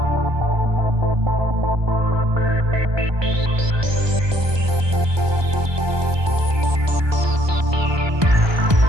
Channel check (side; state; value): left; late; 1.2 ms